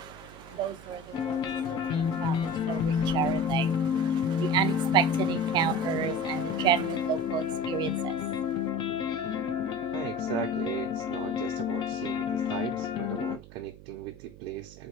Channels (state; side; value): noise; right; hum, 18 dB below the sound